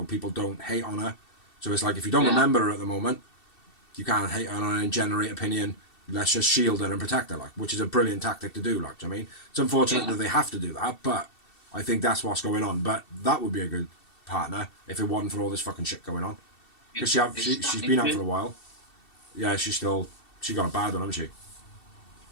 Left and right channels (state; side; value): late; right; 2.7 ms